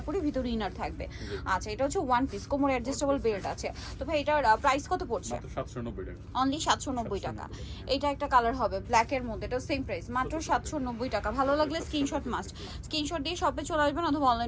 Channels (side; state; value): both; identical; correlation 1.00